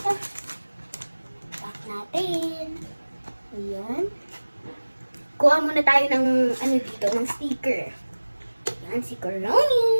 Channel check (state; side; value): inverted; both; correlation -1.00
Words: Pack natin. Ayan. Kuha muna tayo ng ano dito, ng sticker. Ayan, si Coroni.